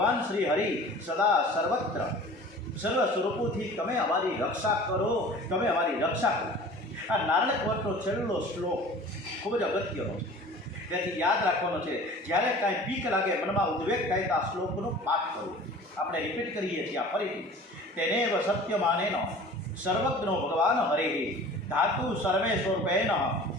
શ્રી હરિ સદા સર્વત્ર સર્વ સ્વરૂપોથી તમે અમારી રક્ષા કરો, તમે અમારી રક્ષા કરો. આ નારાયણ કવચનો છેલ્લો શ્લોક ખૂબ જ અગત્યનો છે. તેથી યાદ રાખવાનો છે. જ્યારે કાંઈ બીક લાગે, મનમાં ઉદ્વેગ થાય તો આ શ્લોકનો પાઠ કરો. આપણે રિપીટ કરીએ છીએ આ ફરીથી. તેનેવ સત્યમાનેન સર્વજ્ઞો ભગવાન હરે ધાતુ સર્વે સ્વરૂપેણ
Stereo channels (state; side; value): normal; both; correlation 0.43